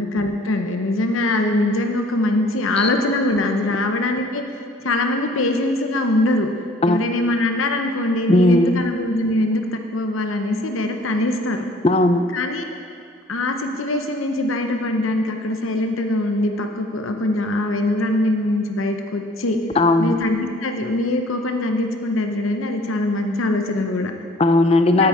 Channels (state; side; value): normal; both; correlation 0.54